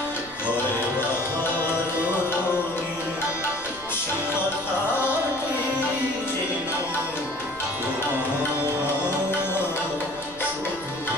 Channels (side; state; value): left; noise; rumble, 22 dB below the sound